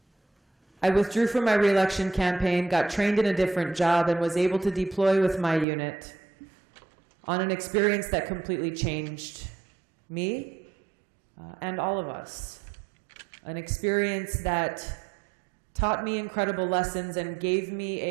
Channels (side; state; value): left; drops out; at 5.7 s